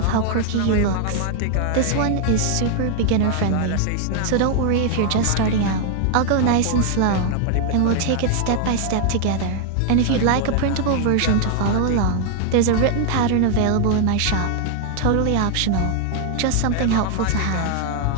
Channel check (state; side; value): different; both; correlation 0.00